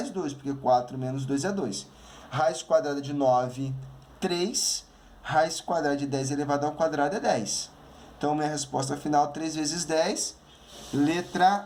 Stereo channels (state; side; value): identical; both; correlation 1.00